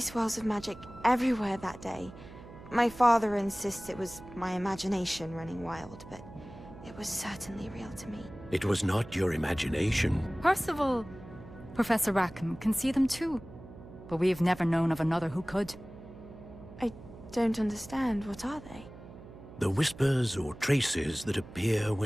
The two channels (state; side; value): noise; right; hum, 17 dB below the sound